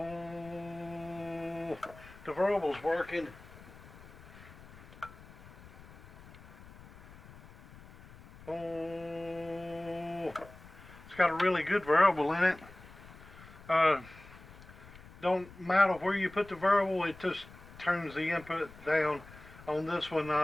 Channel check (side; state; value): left; noise; rumble, 19 dB below the sound